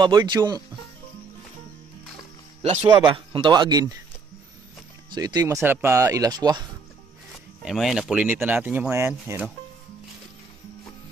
birds, yung laswa ba kung tawagin. So ito yung masarap na ilaswa. Ayan mga yan, napulinit na natin yung mga yan. Ayan o.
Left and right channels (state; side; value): quieter; left; 4.7 dB